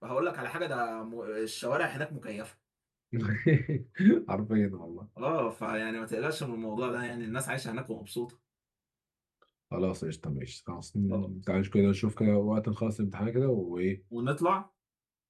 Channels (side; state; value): both; identical; correlation 1.00